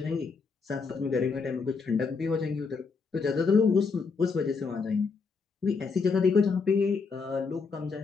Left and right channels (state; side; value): quieter; right; 4.8 dB